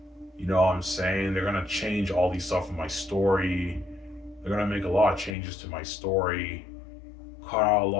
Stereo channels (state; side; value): drops out; right; at 5.4 s